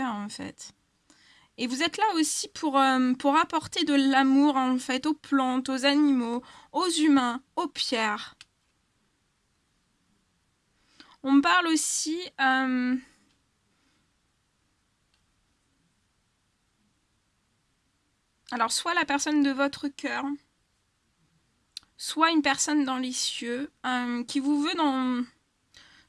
en fait. Et vous êtes là aussi pour apporter de l'amour, en fait, aux plantes, aux animaux, aux humains, aux pierres. On me parle aussi... alors, soit la personne de votre cœur, soit une personne dans les cieux, qui vous veut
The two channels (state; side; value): identical; both; correlation 1.00